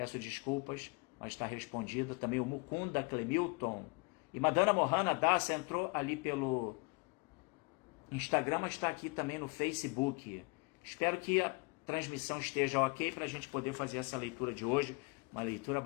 desculpas, mas está respondida. Também o Mukunda Clemilton. E Madana Mohana Dasa entrou ali pelo Instagram, mas está aqui também no Facebook. Espero que a transmissão esteja ok para a gente poder fazer essa leitura de hoje. Uma leitura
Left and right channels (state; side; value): quieter; right; 30.1 dB